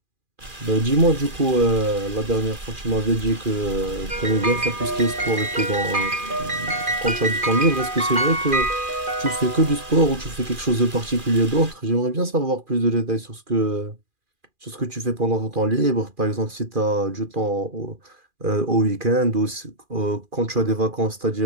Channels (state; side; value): late; left; 2.4 ms